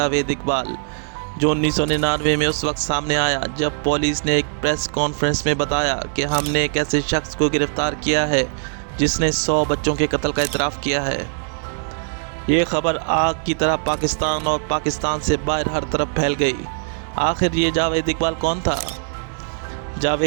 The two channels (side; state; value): left; silent; digital silence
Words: इकबाल, जो 1999 में उस वक्त सामने आया जब पुलिस ने एक प्रेस कॉन्फ्रेंस में बताया कि हमने एक ऐसे शख्स को गिरफ्तार किया है जिसने 100 बच्चों के कत्ल का इतराफ़ किया है। ये खबर आग की तरह पाकिस्तान और पाकिस्तान से बाहर हर तरफ फैल गई। आखिर ये जावेद इकबाल कौन था?